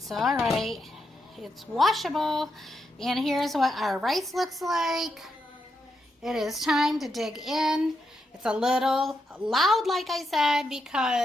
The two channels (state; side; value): normal; both; correlation 0.83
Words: all right. It's washable. And here's what our rice looks like. It is time to dig in. It's a little loud, like I said,